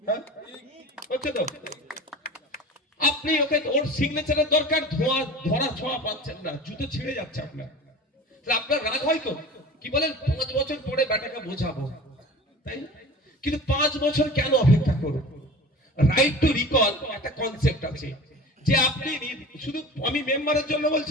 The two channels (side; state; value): both; normal; correlation 0.37